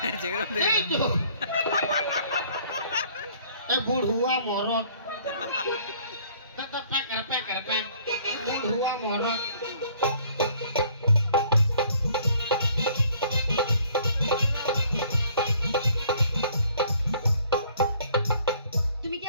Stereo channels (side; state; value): both; inverted; correlation -0.59